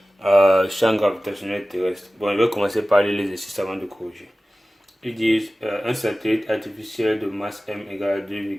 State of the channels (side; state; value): both; normal; correlation 0.96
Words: Champ gravitationnel terrestre. Bon, je vais commencer par lire l'exercice avant de corriger. Ils disent un satellite artificiel de masse M égale à